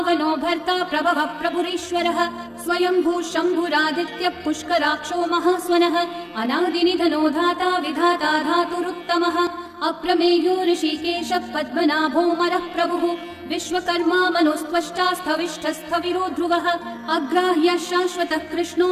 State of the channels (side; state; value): both; identical; correlation 1.00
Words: भर्ता प्रभवः प्रभुरीश्वरः स्वयंभू शम्भुरादित्यः पुष्कराक्षो महास्वनः अनादिनिधनो धाता विधाता धातुरुत्तमः अप्रमेयो ऋषिकेशः पद्मनाभोऽमरः प्रभुः विश्वकर्मा मनुस्त्वष्टा स्थविष्ठस्थविरो ध्रुवः अग्राह्यः शाश्वतः कृष्णो